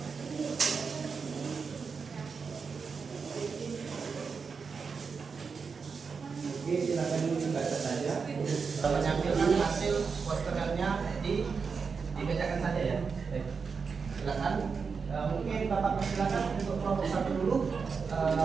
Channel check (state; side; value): quieter; left; 5.4 dB